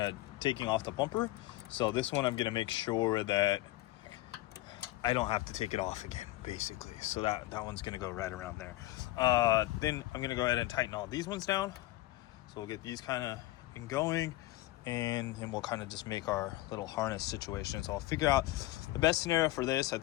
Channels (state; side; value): quieter; right; 17.2 dB